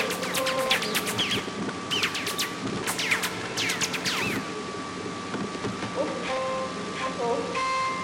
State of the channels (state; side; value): identical; both; correlation 1.00